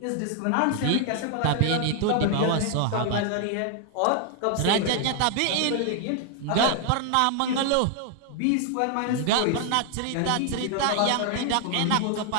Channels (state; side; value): different; both; correlation 0.00